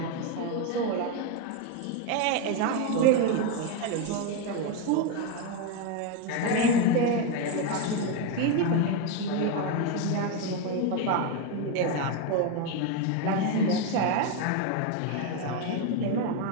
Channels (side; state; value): both; different; correlation 0.02